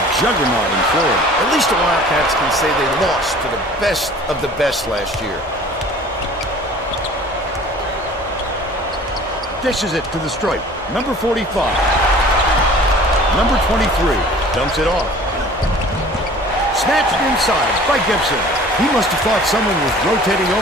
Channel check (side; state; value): both; normal; correlation 0.47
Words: juggernaut in Florida. At least the Wildcats can say they lost to the best of the best last year. Dishes it to the stripe. Number 45. Number 23 dumps it off. Snatched inside by Gibson. He must have thought someone was rotating